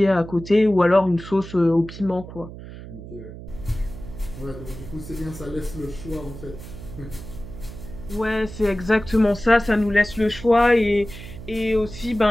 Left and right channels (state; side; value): noise; right; hum, 13 dB below the sound